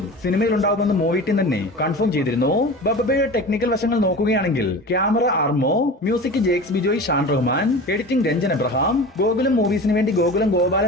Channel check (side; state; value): both; normal; correlation 0.34